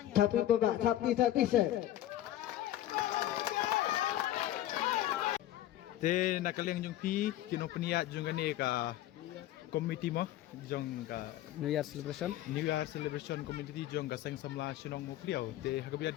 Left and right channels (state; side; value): quieter; right; 13.4 dB